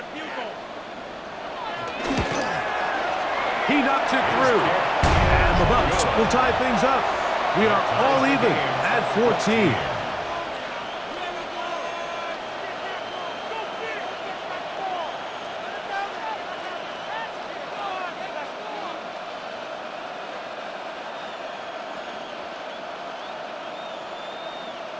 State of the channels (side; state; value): both; identical; correlation 1.00